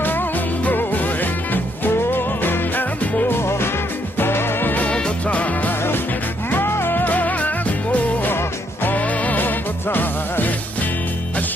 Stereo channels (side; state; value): both; normal; correlation 0.73